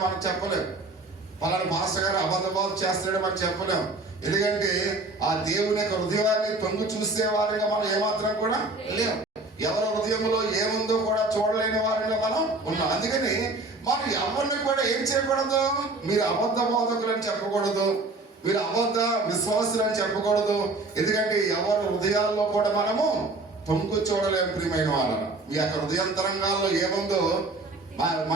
మనం చెప్పలేము, పలానా పాస్టర్ గారు అబద్ధ బోధ చేస్తాడని మనం చెప్పలేము. ఎందుకంటే ఆ దేవుని యొక్క హృదయాన్ని తొంగి చూసే వారిగా మనం ఏమాత్రం కూడా లేవు. ఎవరి హృదయంలో ఏముందో కూడా చూడలేని వారిగా మనం ఉన్నాం. అందుకని మనం ఎవరిని కూడా ఏం చేయకూడదు, మీరు అబద్ధ బోధకులు అని చెప్పకూడదు, మీరు అబద్ధ విశ్వాసులు అని చెప్పకూడదు. ఎందుకంటే ఎవరి హృదయాల్లో కూడా మనము తొంగు చూడలేము. ప్రియమైన వాళ్ళను మీ యొక్క హృదయాంతరంగాల్లో ఏముందో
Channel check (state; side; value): quieter; left; 3.1 dB